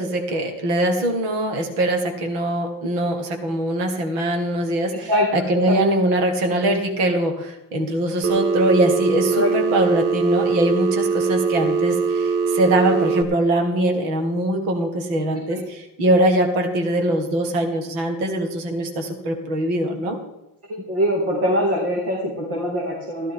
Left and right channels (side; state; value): left; late; 6.0 ms